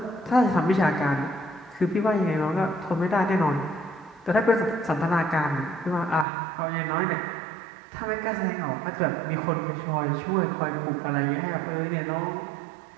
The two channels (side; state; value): left; drops out; at 6.2 s